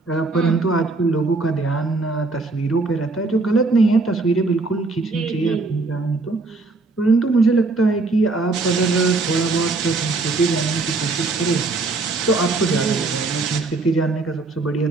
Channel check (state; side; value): quieter; left; 3.6 dB